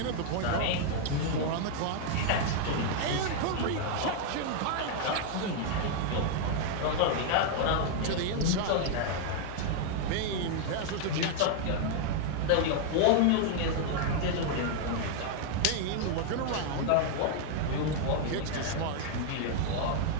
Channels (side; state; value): both; different; correlation 0.00